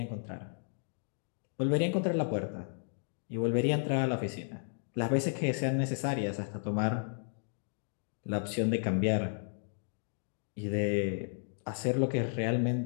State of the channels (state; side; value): silent; right; digital silence